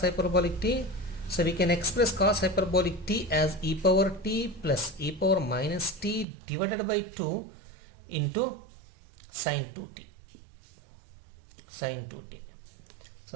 hyperbolic t? So we can express cos hyperbolic t as e power t plus e power minus t divided by 2 into sin 2t. Sin 2t.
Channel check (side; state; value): left; drops out; at 6.2 s